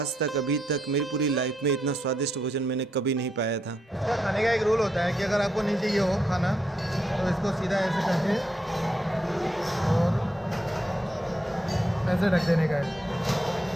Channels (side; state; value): both; normal; correlation 0.79